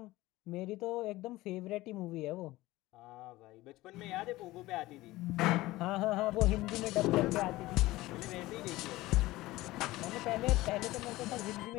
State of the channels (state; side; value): quieter; right; 18.3 dB